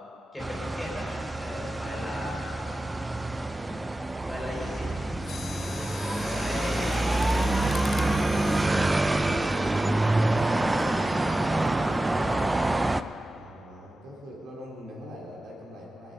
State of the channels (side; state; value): both; normal; correlation 0.95